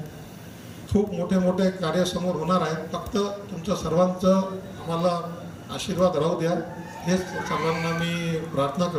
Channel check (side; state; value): both; identical; correlation 1.00